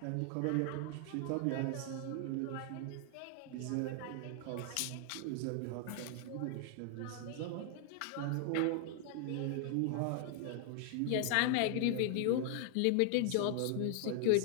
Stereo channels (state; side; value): different; both; correlation 0.00